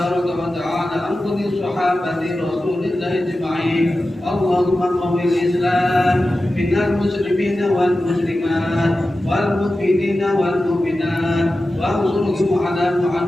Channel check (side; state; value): both; normal; correlation 0.93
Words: وتعالى عن كل صحابة رسول الله أجمعين. اللهم قوي الإسلام من المسلمين والمسلمات والمؤمنين والمؤمنات وانصرهم على